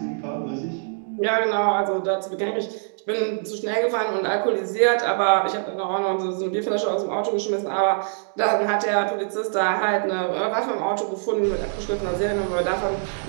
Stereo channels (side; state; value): left; silent; digital silence